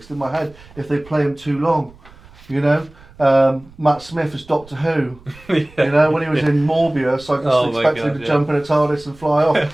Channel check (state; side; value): noise; right; rumble, 24 dB below the sound